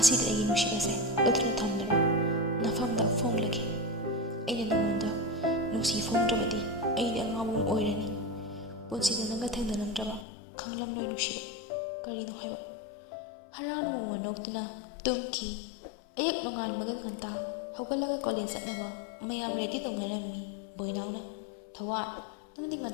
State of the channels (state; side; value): drops out; right; at 10.2 s